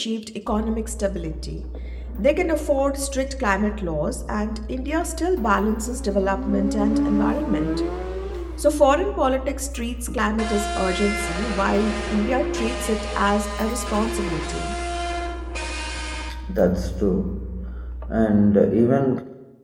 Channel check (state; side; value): identical; both; correlation 1.00